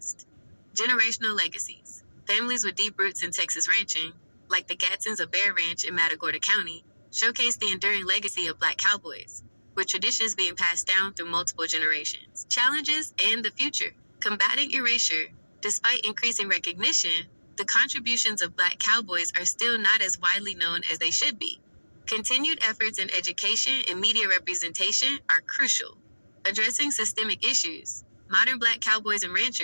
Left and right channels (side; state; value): both; inverted; correlation -1.00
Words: Generational legacies. Families with deep roots in Texas ranching, like the Gadsens of Bear Ranch in Matagorda County, showcase the enduring legacy of black cowboys, with traditions being passed down through multiple generations. Challenges and the future. Combating erasure. Despite increasing recognition, the contributions of black cowboys are still not as widely known as they should be. Continued efforts in education and media representation are crucial. Addressing systemic issues. Modern black cowboys and